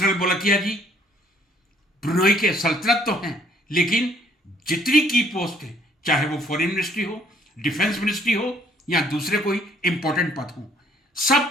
बोलकिया जी ब्रुनेई के सल्तनत तो हैं, लेकिन जितनी की पोस्ट है, चाहे वो फॉरेन मिनिस्ट्री हो, डिफेंस मिनिस्ट्री हो या दूसरे कोई इंपॉर्टेंट पद हो,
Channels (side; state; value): both; normal; correlation 0.62